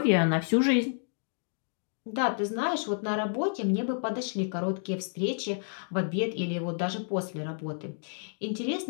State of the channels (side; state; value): right; silent; digital silence